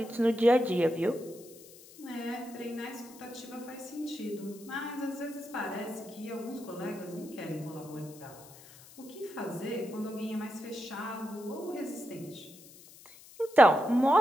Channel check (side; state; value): left; noise; hiss, 20 dB below the sound